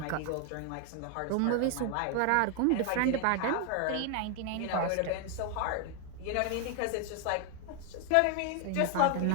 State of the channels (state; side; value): different; both; correlation 0.00